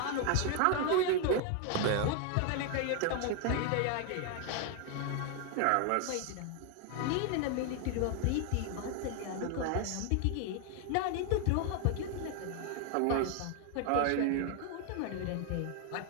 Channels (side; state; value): both; different; correlation 0.00